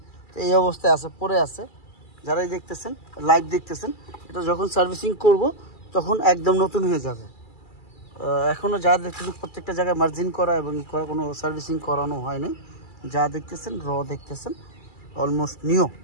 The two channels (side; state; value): right; late; 2.3 ms